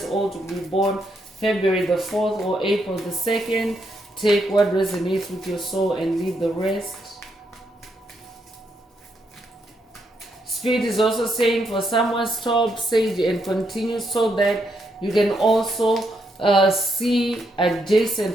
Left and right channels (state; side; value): normal; both; correlation 0.78